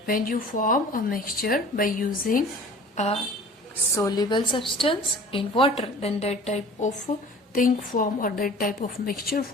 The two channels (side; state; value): both; normal; correlation 0.44